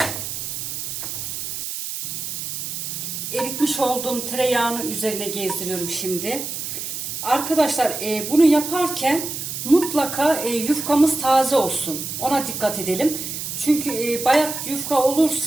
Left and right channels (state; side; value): noise; right; hiss, 5 dB below the sound